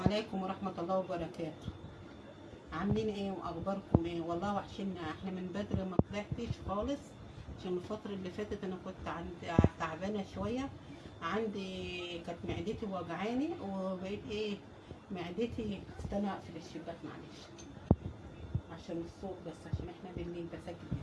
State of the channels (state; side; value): identical; both; correlation 1.00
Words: ورحمة الله وبركاته. عاملين ايه واخباركم ايه؟ والله وحشنا، احنا من بدري ما طلعتش خالص عشان الفترة اللي فاتت انا كنت تعبانة شوية. كانت معدتي وجعاني وبقيت ايه معدتي. استنى اقفل الشباك معلش عشان الصوت، بس عشان احنا بالليل بسجل.